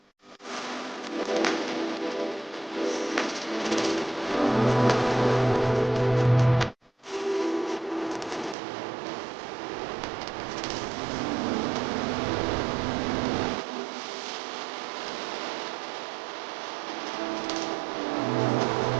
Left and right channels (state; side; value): drops out; left; at 8.6 s